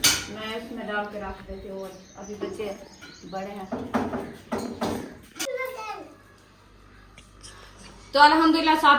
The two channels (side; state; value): both; identical; correlation 1.00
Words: मैं इसमें डाल के रख देती हूँ, अभी बच्चे बड़े हैं। तो अल्हम्दुलिल्लाह